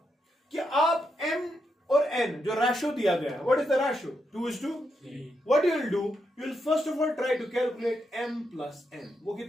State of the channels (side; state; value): both; normal; correlation 0.82